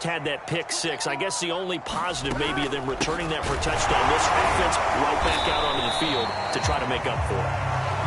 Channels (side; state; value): both; identical; correlation 1.00